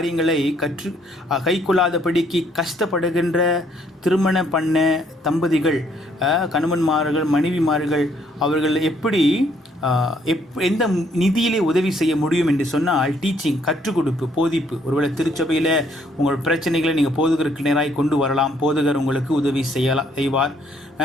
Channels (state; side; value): normal; both; correlation 0.67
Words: கைக்கொள்ளாதபடிக்கு கஷ்டப்படுகின்ற திருமணம் பண்ண தம்பதிகள், கணவன்மார்கள் மனைவிமார்கள் அவர்கள் எப்படி எந்த நிதியிலே உதவி செய்ய முடியும் என்று சொன்னால் டீச்சிங், கற்றுக் கொடுப்பு, போதிப்பு. ஒருவேளை திருச்சபையில் உங்கள் பிரச்சனைகளை நீங்கள் போதகருக்கு நேராக கொண்டு வரலாம், போதகர் உங்களுக்கு உதவி செய்வார்.